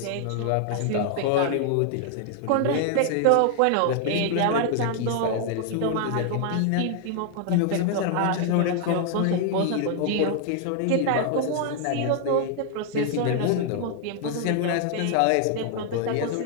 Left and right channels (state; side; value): different; both; correlation 0.00